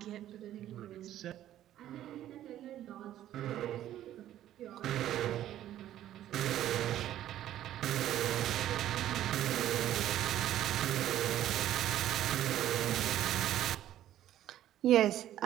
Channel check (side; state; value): left; quieter; 12.4 dB